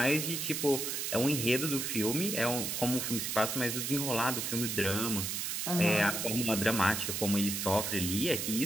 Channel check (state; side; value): noise; right; hiss, 2 dB below the sound